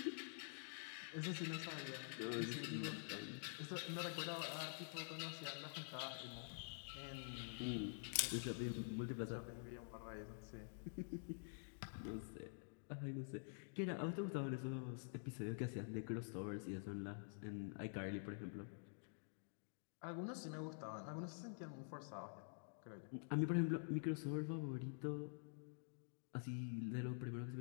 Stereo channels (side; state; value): right; silent; digital silence